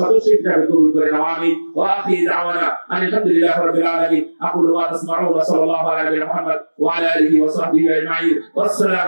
হিসেবে কবুল করে নাও। আমিন। ওয়া আখিরু দাওয়ানা আলহামদুলিল্লাহি রাব্বিল আলামিন। আকুলু ওয়া আসমাউন ওয়া সাল্লাল্লাহু আলা মুহাম্মদ ওয়া আলা আলিহি ওয়া সাহবিহি আজমাইন।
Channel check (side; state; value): both; inverted; correlation -1.00